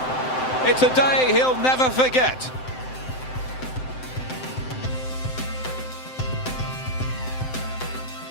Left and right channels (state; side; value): late; right; 7.8 ms